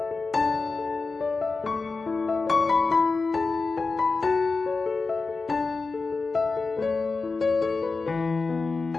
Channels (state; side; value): quieter; right; 4.0 dB